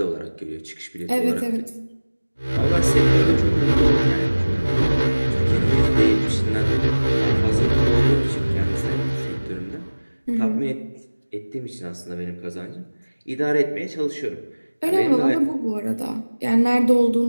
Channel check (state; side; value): inverted; both; correlation -1.00